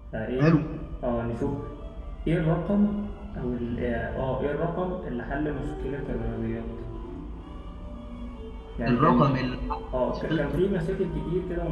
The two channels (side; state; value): both; identical; correlation 1.00